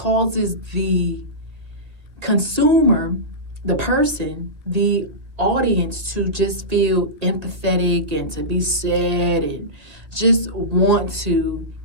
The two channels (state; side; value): late; left; 1.9 ms